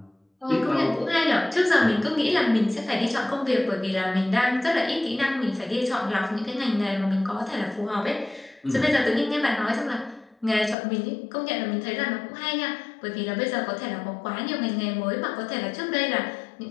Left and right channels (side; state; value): right; drops out; at 10.8 s